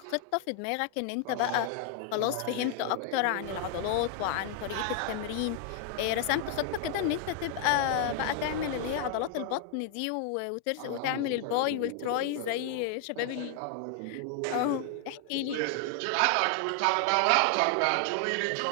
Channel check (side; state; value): both; different; correlation 0.00